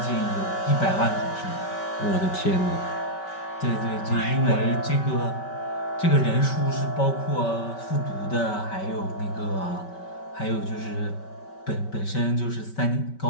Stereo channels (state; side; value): late; right; 5.2 ms